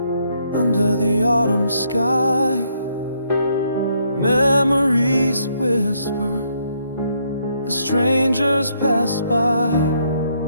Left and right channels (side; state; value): both; inverted; correlation -0.73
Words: under the autumn sky. Memories whisper as strangers pass by.